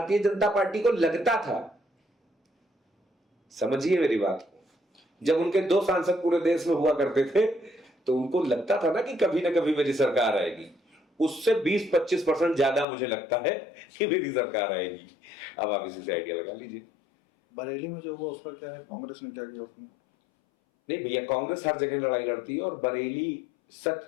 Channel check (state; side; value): drops out; right; at 12.9 s